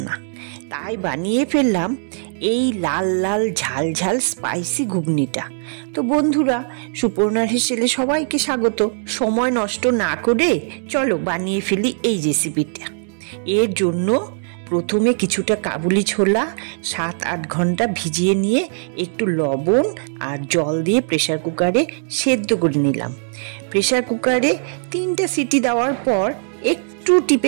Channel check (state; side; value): silent; left; 66 dB below the other